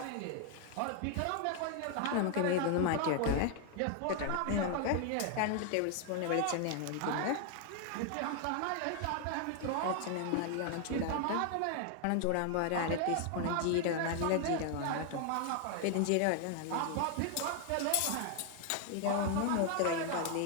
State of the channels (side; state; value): both; different; correlation 0.00